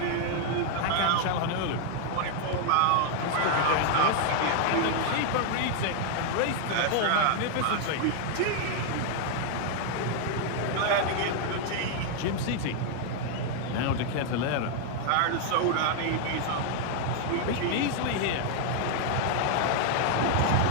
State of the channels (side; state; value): both; different; correlation 0.00